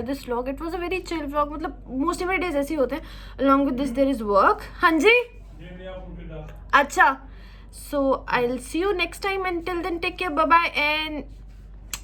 this vlog. It was a very chill vlog. मतलब most of my days ऐसे ही होते हैं। Along with this there is work. हाँ जी, अच्छा, so I'll see you next time. Until then, take care, bye bye, and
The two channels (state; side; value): identical; both; correlation 1.00